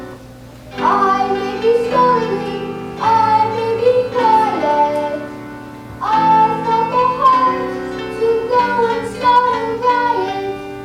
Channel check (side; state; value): both; identical; correlation 1.00